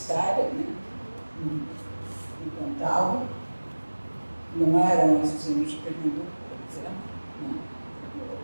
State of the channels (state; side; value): inverted; both; correlation -1.00